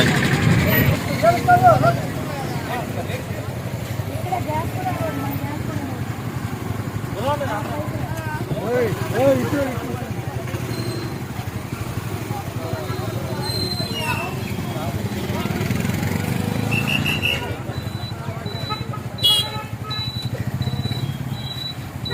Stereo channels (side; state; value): both; identical; correlation 1.00